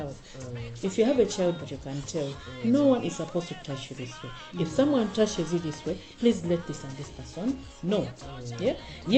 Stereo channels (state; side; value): identical; both; correlation 1.00